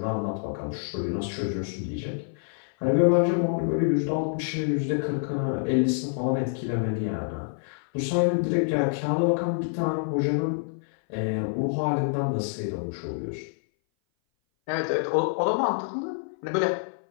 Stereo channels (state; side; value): silent; right; 58 dB below the other